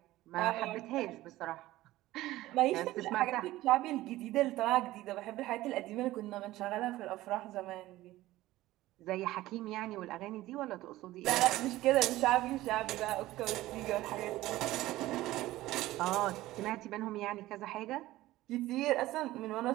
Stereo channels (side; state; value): left; quieter; 16.6 dB